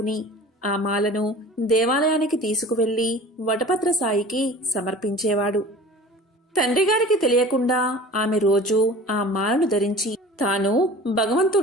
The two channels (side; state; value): both; normal; correlation 0.41